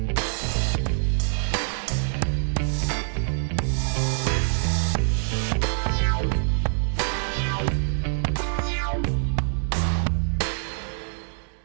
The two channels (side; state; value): left; silent; digital silence